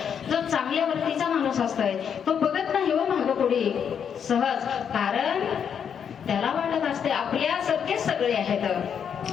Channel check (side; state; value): right; quieter; 7.7 dB